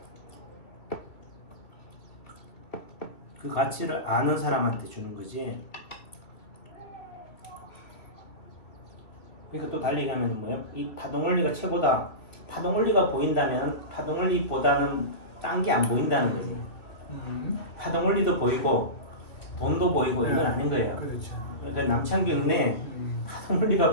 그 가치를 아는 사람한테 주는 거지. 그러니까 또 달리 가면 뭐예요? 이 파동 원리가 최고다. 파동 원리가 보인다면 파동 원리보다는 딴 게 안 보인다는 거지. 파동 원리도 보이고 돈도 보이고 이건 아닌 거예요. 그렇죠. 그러니까 남창균의 파동 원리가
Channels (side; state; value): right; late; 2.9 ms